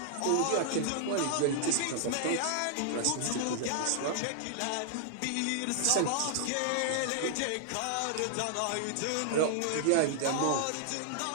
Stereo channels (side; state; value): both; different; correlation -0.01